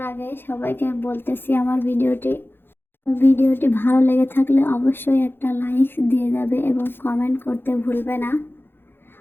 আগে সবাইকে বলতেছি, আমার ভিডিওটি ভালো লেগে থাকলে অবশ্যই একটা লাইক দিয়ে যাবে এবং কমেন্ট করতে ভুলবে না।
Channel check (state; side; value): late; right; 0.10 ms